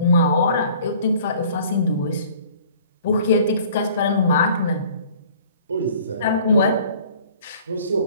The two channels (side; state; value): both; inverted; correlation -0.52